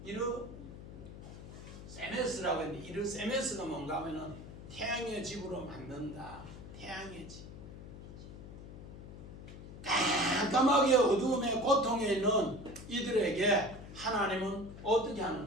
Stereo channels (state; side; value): noise; left; hum, 13 dB below the sound